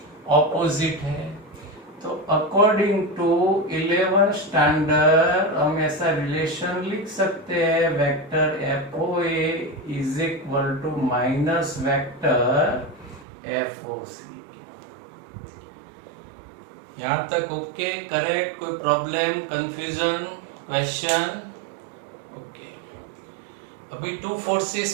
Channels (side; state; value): left; drops out; at 13.2 s